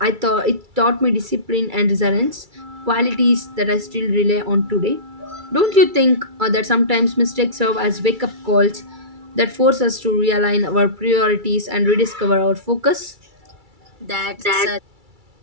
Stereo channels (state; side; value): late; left; 2.3 ms